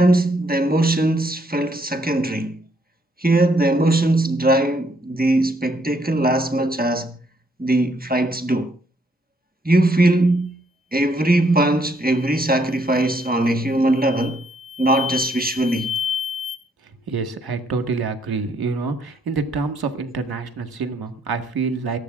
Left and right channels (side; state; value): both; normal; correlation 0.70